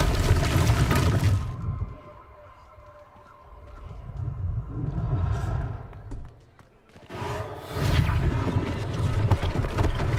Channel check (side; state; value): both; identical; correlation 1.00